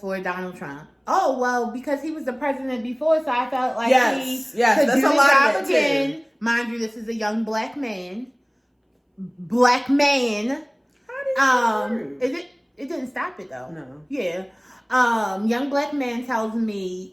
Donald Trump? Oh, well, because he was the president before, so I felt like he could do the job again. Too. Mind you, this is a young black man. How did it didn't stop it, though. No. Yeah. Young black man tells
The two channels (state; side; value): identical; both; correlation 1.00